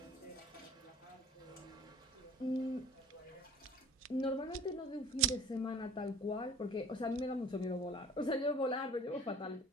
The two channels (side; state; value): both; normal; correlation 0.47